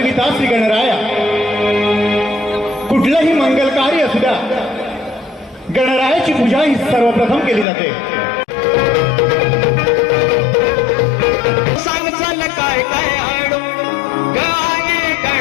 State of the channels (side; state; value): right; drops out; at 7.7 s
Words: ठेविता श्री गणराया. कुठलंही मंगल कार्य असू द्या, गणरायाची पूजा ही सर्वप्रथम केली जाते. सांग चल काय काय आणू गाणे